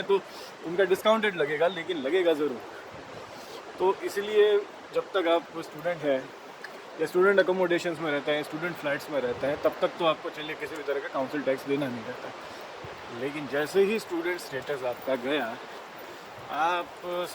तो उनका डिस्काउंटेड लगेगा, लेकिन लगेगा ज़रूर। तो इसलिए जब तक आप स्टूडेंट हैं या स्टूडेंट अकोमोडेशंस में रहते हैं, स्टूडेंट फ्लैट्स में रहते हैं, तब तक तो आपको चलिए किसी भी तरह का काउंसिल टैक्स देना नहीं रहता। लेकिन जैसे ही स्टूडेंट स्टेटस आपका गया, आप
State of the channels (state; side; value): identical; both; correlation 1.00